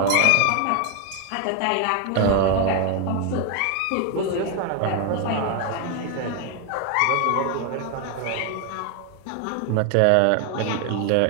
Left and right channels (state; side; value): different; both; correlation 0.01